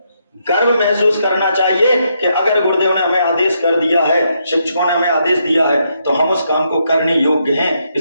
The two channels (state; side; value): inverted; both; correlation -0.78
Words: गर्व महसूस करना चाहिए कि अगर गुरुदेव ने हमें आदेश कर दिया है, शिक्षकों ने हमें आदेश दिया है, तो हम उस काम को करने योग्य हैं,